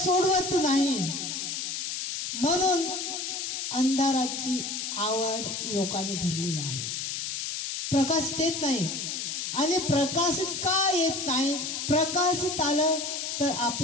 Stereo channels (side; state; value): left; noise; hiss, 4 dB below the sound